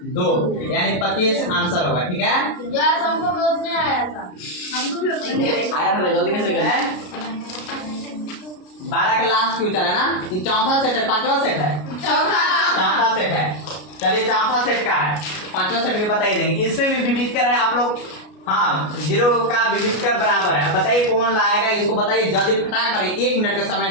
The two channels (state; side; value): late; right; 33 ms